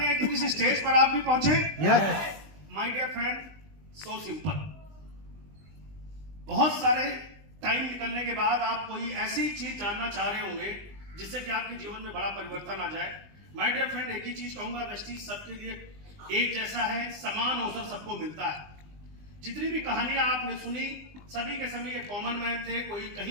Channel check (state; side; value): late; left; 20 ms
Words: हैं कि किसी स्टेज पर आप भी पहुंचे? Yes. My dear friend, so simple. बहुत सारे टाइम निकलने के बाद आप कोई ऐसी चीज जानना चाह रहे होंगे जिससे कि आपके जीवन में बड़ा परिवर्तन आ जाए। माय डियर फ्रेंड, एक ही चीज कहूंगा, वेस्टीज सबके लिए एक जैसा है, समान अवसर सबको मिलता है। जितनी भी कहानियां आपने सुनी, सभी के सभी एक कॉमन मैन थे। कोई